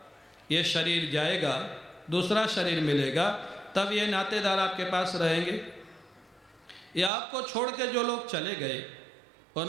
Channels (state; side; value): drops out; left; at 7.1 s